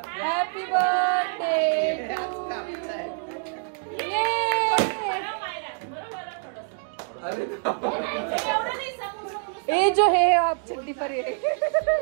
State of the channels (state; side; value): silent; left; 61 dB below the other